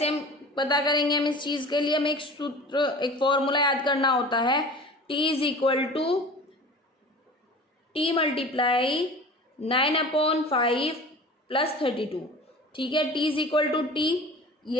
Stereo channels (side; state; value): both; normal; correlation 0.39